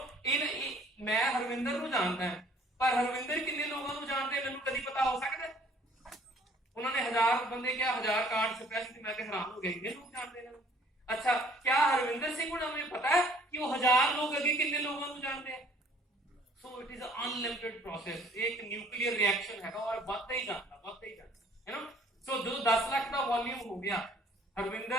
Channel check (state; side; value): normal; both; correlation 0.57